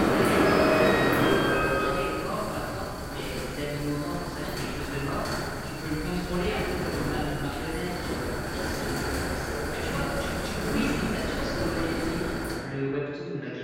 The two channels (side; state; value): both; identical; correlation 1.00